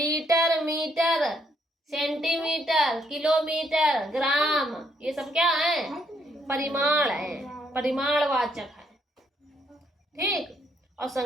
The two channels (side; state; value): both; normal; correlation 0.72